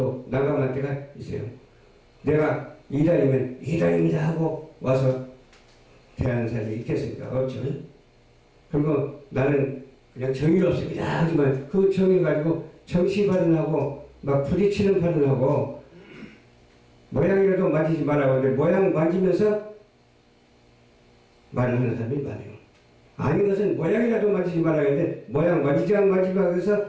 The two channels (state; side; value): identical; both; correlation 1.00